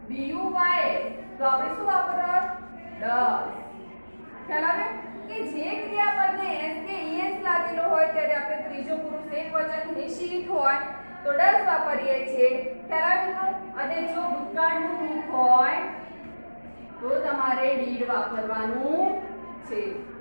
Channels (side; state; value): both; inverted; correlation -1.00